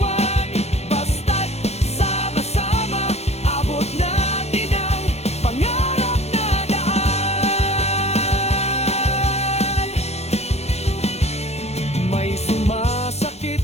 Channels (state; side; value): late; right; 0.31 ms